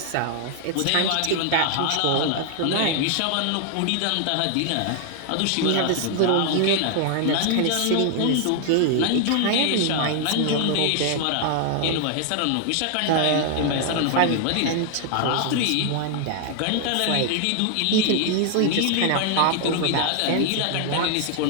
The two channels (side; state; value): both; different; correlation 0.00